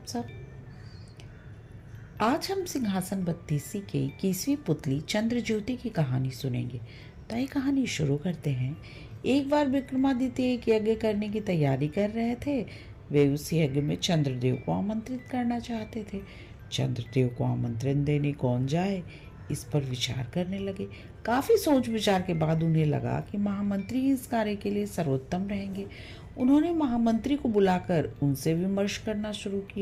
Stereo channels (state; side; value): identical; both; correlation 1.00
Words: सब। आज हम सिंहासन बत्तीसी के 21वीं पुतली चंद्रज्योति की कहानी सुनेंगे। तो ये कहानी शुरू करते हैं। एक बार विक्रमादित्य एक यज्ञ करने की तैयारी कर रहे थे। वे उस यज्ञ में चंद्रदेव को आमंत्रित करना चाहते थे। चंद्रदेव को आमंत्रण देने कौन जाए, इस पर विचार करने लगे। काफी सोच विचार के बाद उन्हें लगा कि महामंत्री इस कार्य के लिए सर्वोत्तम रहेंगे। उन्होंने महामंत्री को बुलाकर उनसे विमर्श करना शुरू